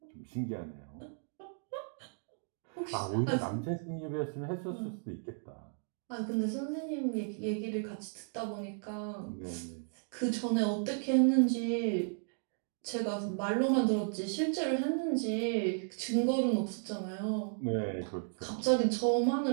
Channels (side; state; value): left; silent; 55 dB below the other